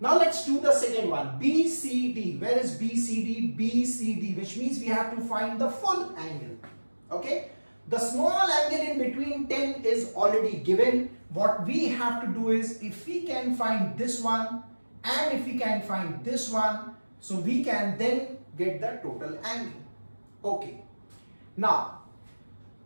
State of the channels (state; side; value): inverted; both; correlation -1.00